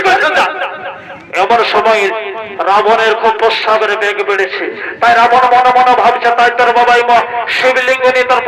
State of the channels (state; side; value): identical; both; correlation 1.00